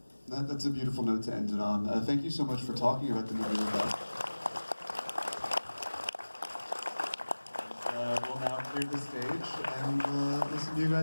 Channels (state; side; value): inverted; both; correlation -1.00